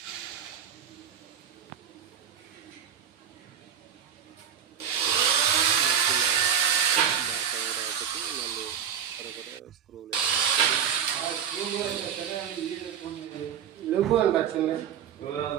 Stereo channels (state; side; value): quieter; left; 8.6 dB